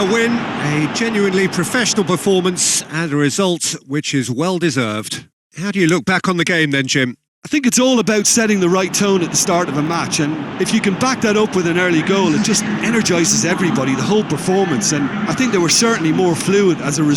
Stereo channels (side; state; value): both; identical; correlation 1.00